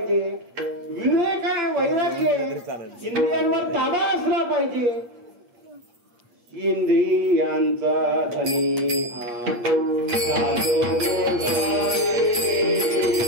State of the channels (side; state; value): left; late; 8.5 ms